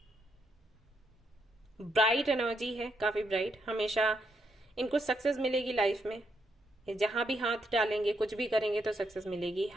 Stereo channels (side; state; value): both; normal; correlation 0.78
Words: ब्राइट एनर्जी है, काफी ब्राइट, हमेशा इनको सक्सेस मिलेगी लाइफ में, जहां भी हाथ डालेंगे कुछ भी करेंगे तो सक्सेस मिलेगी,